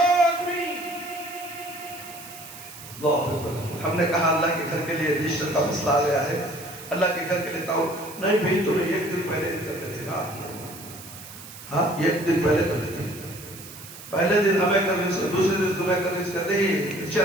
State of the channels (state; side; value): noise; right; hiss, 15 dB below the sound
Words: آدمی، ہم نے کہا اللہ کے گھر کے لیے رجسٹر کا مسئلہ آ گیا ہے، اللہ کے گھر کے لیے تاؤ نہیں بھئی تمہیں ایک دن پہلے کرتے تھے نا، ہاں ایک دن پہلے کرتے تھے، پہلے دن ہمیں کنوینس، دوسرے دن تمہیں کنوینس کرتے ہی